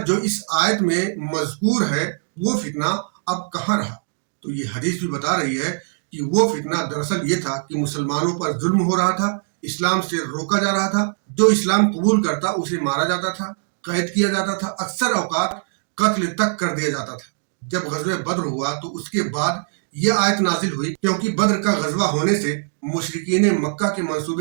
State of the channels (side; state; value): left; silent; digital silence